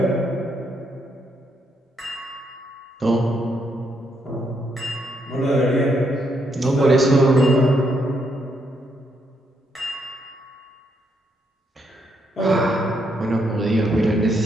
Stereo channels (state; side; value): normal; both; correlation 0.76